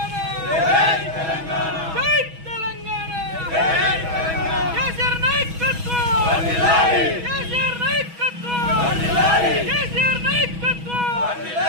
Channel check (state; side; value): late; left; 6.2 ms